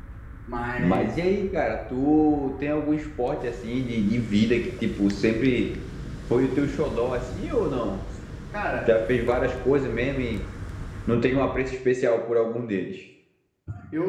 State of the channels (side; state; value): both; identical; correlation 1.00